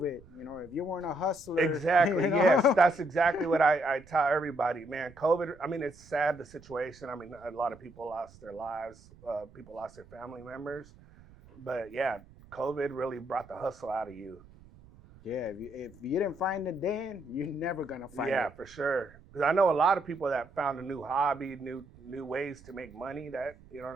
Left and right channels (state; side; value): noise; right; rumble, 23 dB below the sound